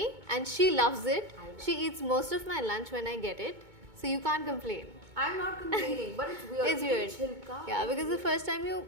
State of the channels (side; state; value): left; late; 2.2 ms